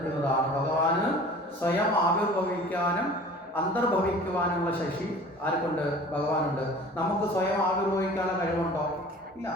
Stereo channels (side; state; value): both; normal; correlation 0.44